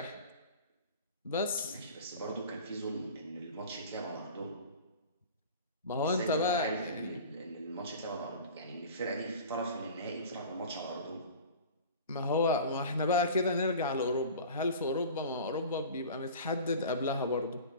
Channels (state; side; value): inverted; both; correlation -0.39